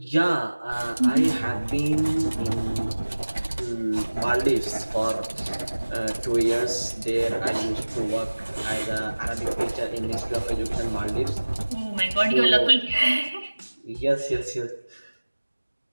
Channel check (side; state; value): both; inverted; correlation -1.00